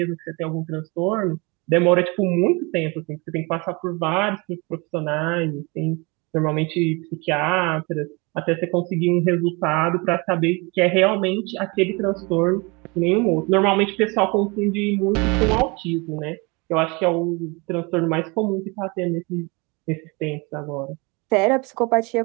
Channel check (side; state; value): left; quieter; 27.8 dB